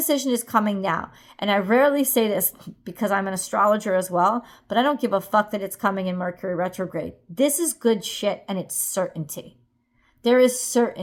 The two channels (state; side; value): identical; both; correlation 1.00